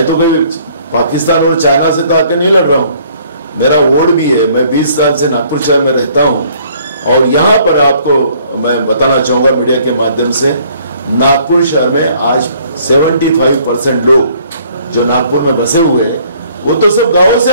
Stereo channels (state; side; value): inverted; both; correlation -0.60